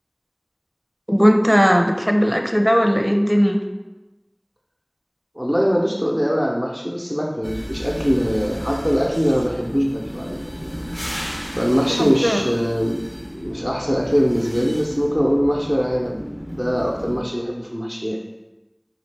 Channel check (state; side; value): identical; both; correlation 1.00